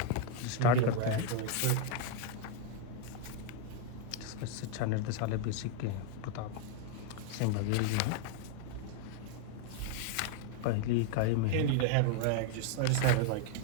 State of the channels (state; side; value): different; both; correlation 0.01